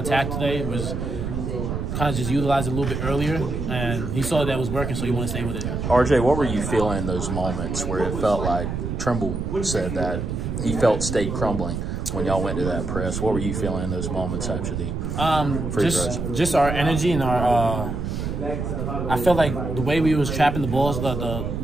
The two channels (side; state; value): right; noise; rumble, 3 dB below the sound